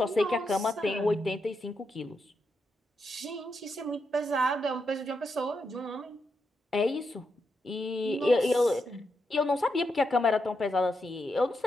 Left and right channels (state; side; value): normal; both; correlation 0.83